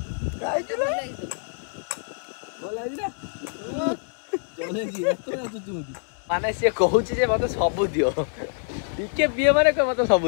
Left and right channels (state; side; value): silent; right; digital silence